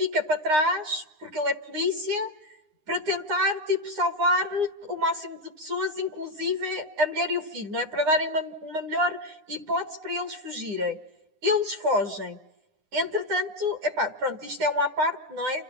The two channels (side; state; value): left; late; 9.7 ms